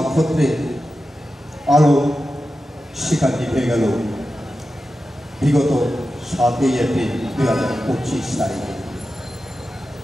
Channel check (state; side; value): normal; both; correlation 0.92